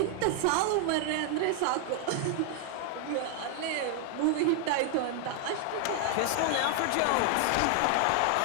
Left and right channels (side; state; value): both; different; correlation 0.00